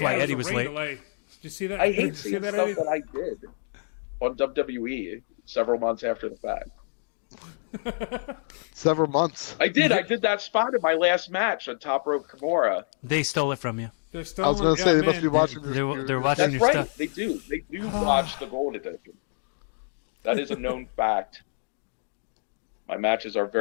why it Eddie a was rain late. delay. Did you see that? I Did you hate see seeing that, stuff Eddie? that I did on WWE several months after the fact. Several months. I did that spot in my last match on Top Rope Kimura. They stole it from you. They're I was stolen. going to say yeah, they must be man. watching. They're watching That's your right. stuff. They do. They do watch the Gold Edition. That is a known fact. My matches are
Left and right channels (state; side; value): silent; right; 60 dB below the other